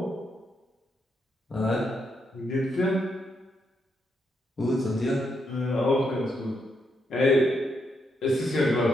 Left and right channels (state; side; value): normal; both; correlation 0.79